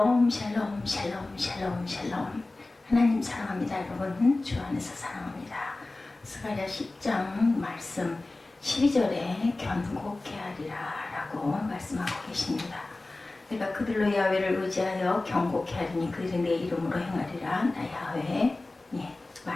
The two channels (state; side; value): quieter; right; 3.1 dB